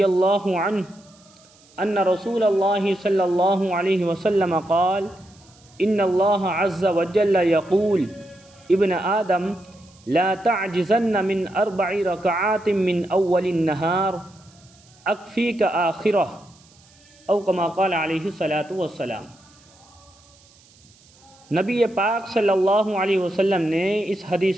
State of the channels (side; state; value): right; noise; hiss, 28 dB below the sound